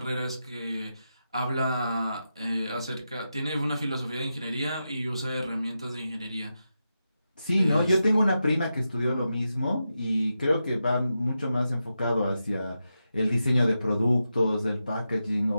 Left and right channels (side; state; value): both; inverted; correlation -0.89